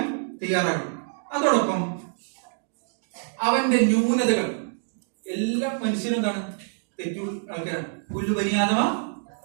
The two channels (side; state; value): left; silent; digital silence